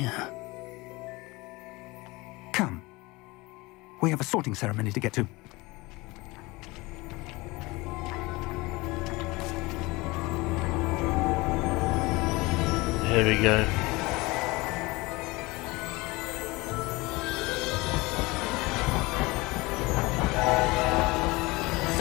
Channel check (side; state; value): right; quieter; 22.8 dB